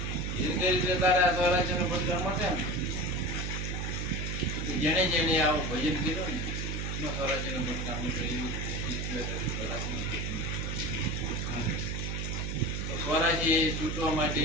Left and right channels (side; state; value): right; noise; hum, 2 dB below the sound